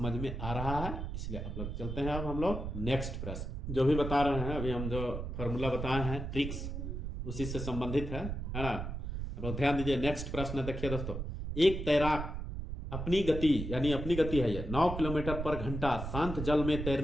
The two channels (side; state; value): right; noise; rumble, 5 dB below the sound